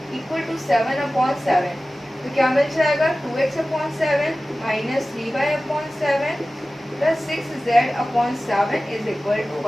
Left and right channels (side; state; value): both; normal; correlation 0.96